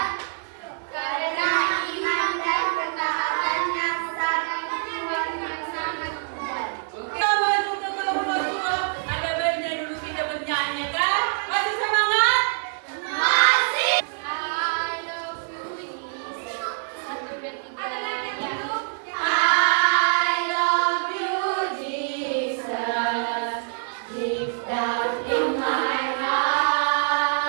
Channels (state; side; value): silent; left; digital silence